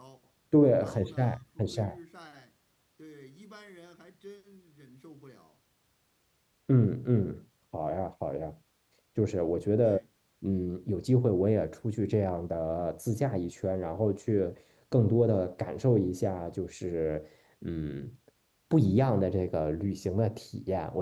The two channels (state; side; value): identical; both; correlation 1.00